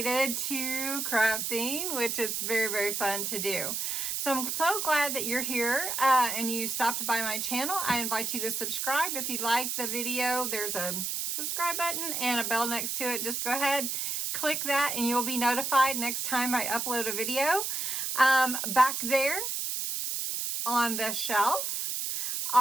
to crafting, which is very, very fun to do. So I'm so glad that you're here and you stopped by my channel. I invite you to subscribe. If you like the video, there's a subscribe button and a bell next to it. Just go ahead, click that, and you'll be notified next time I upload a video. Back there on the shelf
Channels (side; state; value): right; noise; hiss, 1 dB below the sound